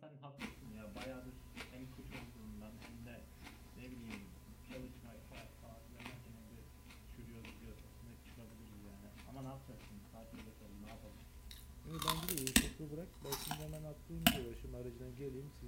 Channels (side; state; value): both; identical; correlation 1.00